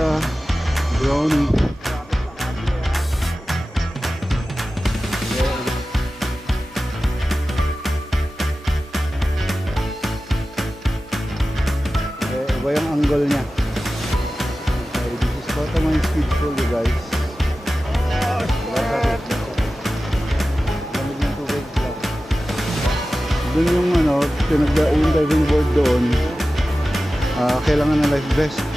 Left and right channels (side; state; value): both; normal; correlation 0.95